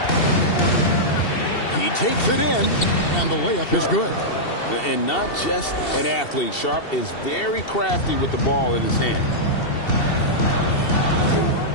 He takes it in, and the layup is good. And not just an athlete. Sharp is very crafty with the ball in his hand.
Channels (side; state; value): right; late; 2.7 ms